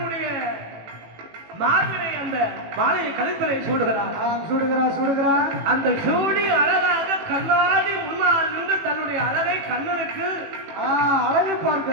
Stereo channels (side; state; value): left; late; 18 ms